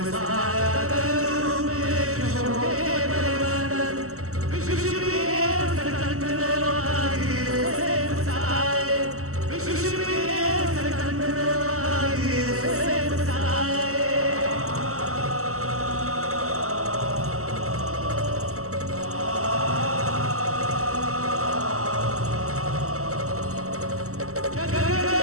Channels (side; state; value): left; late; 0.64 ms